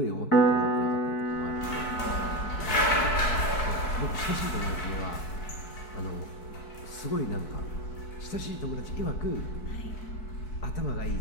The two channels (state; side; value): late; right; 4.6 ms